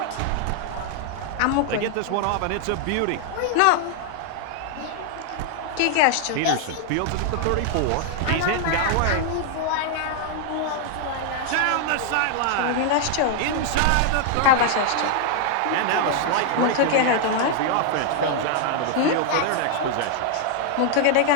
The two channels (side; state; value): both; different; correlation 0.00